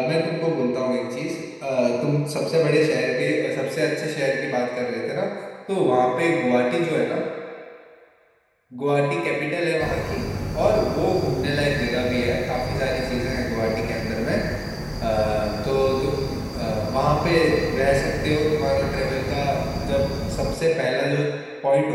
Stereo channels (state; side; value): identical; both; correlation 1.00